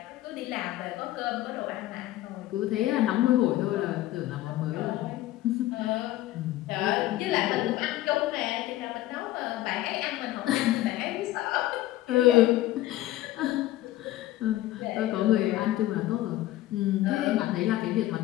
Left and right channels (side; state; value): right; quieter; 15.4 dB